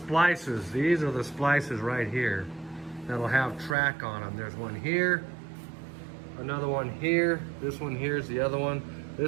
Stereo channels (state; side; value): drops out; left; at 3.8 s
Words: These are the splices right here that'll have track on them. There's one here, another one here, this one here is the other one.